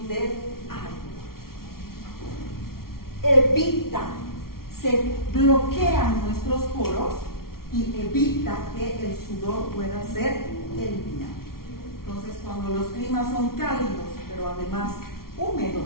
del agua. Se bloquean nuestros poros y evita que el sudor pueda ser eliminado. Entonces, cuando los climas son cálidos, pero además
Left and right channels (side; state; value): right; late; 0.93 ms